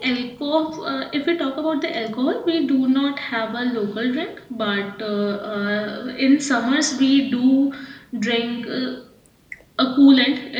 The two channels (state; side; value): identical; both; correlation 1.00